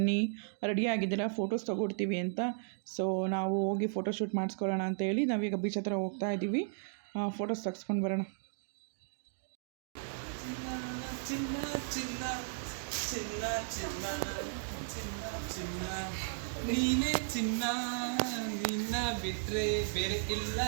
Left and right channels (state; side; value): silent; left; digital silence